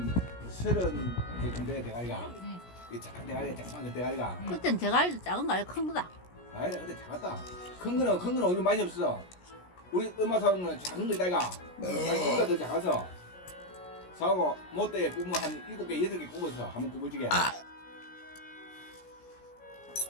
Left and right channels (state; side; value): late; right; 17 ms